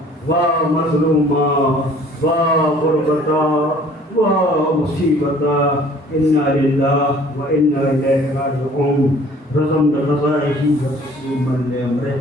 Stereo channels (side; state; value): both; normal; correlation 0.53